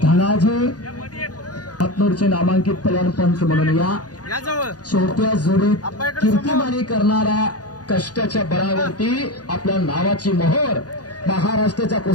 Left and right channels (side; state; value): right; late; 0.68 ms